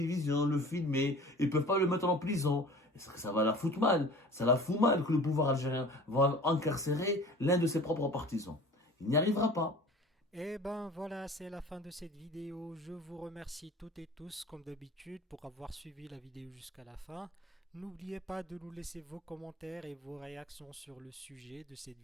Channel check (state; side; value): normal; both; correlation 0.43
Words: le filmer. Ils peuvent pas le mettre en prison. Ça va la foutre mal. Ça la fout mal que le pouvoir algérien va incarcérer l'un de ses propres partisans. Il n'y arrivera pas. Et ben voilà, c'est la fin de cette vidéo. Je vous remercie toutes et tous, comme d'habitude, pour avoir suivi la vidéo jusqu'à la fin. N'oubliez pas de nous laisser vos commentaires et vos réactions sur le sujet de cette